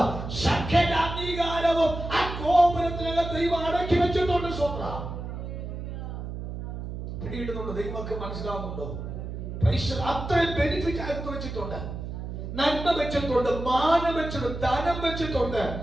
സകല അംഗീകാരവും ആ ഗോപുരത്തിനകത്ത് ദൈവം അടക്കി വെച്ചിട്ടുണ്ട്. സ്വന്തം പിടിയിടുന്നുണ്ട്. ദൈവമൊക്കെ മനസ്സിലാവുന്നുണ്ടോ? അത്രയും ബെനിഫിറ്റ് ആയിട്ട് വെച്ചിട്ടുണ്ട്, നന്മ വെച്ചിട്ടുണ്ട്, മാനം വെച്ചിട്ടുണ്ട്, ധനം വെച്ചിട്ടുണ്ട്.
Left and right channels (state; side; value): noise; right; hum, 7 dB below the sound